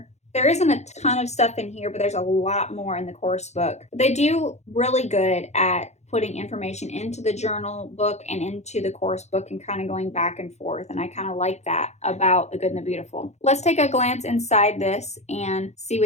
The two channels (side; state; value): right; late; 0.32 ms